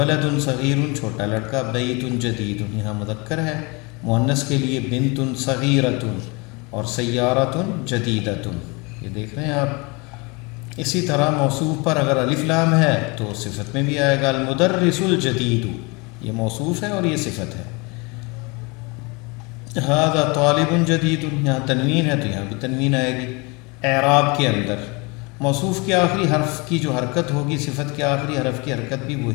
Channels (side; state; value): right; quieter; 28.3 dB